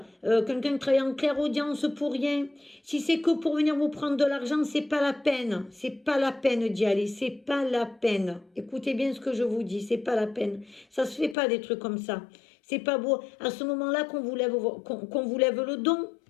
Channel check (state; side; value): drops out; right; at 11.4 s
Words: quelqu'un qui travaille en clairaudience pour rien. Si c'est que pour venir vous prendre de l'argent, c'est pas la peine. C'est pas la peine d'y aller. C'est pas la peine. Écoutez bien ce que je vous dis. C'est pas la peine. Ça se fait pas des trucs comme ça. C'est pas beau. À ce moment-là qu'on vous lève, qu'on vous lève le don,